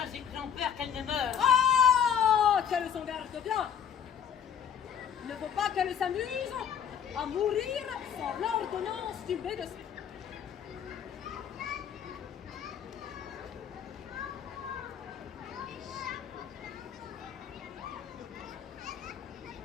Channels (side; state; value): right; quieter; 8.3 dB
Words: j'ai craint peur qu'elle ne meure. Ah, qu'elle s'en garde bien. Il ne faut pas qu'elle s'amuse à mourir sans l'ordonnance du médecin.